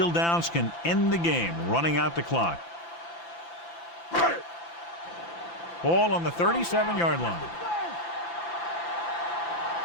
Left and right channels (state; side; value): late; right; 5.9 ms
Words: downs can end the game, running out the clock. Ball on the 37-yard line.